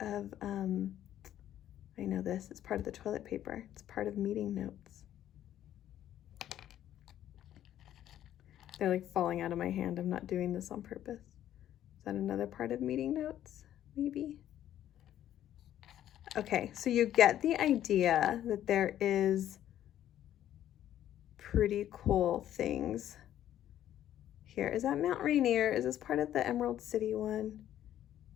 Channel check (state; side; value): quieter; right; 11.7 dB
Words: I know this, it's part of the toilet paper. It's part of meeting notes. They're like falling out of my hand. I'm not doing this on purpose. Is that another part of meeting notes? Maybe. Okay, so you get the idea that there is pretty cool things here. Is that Mount Rainier? Is this part of the Emerald City one?